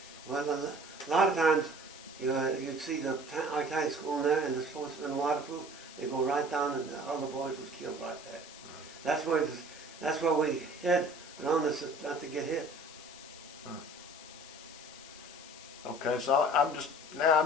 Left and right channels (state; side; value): noise; left; hiss, 16 dB below the sound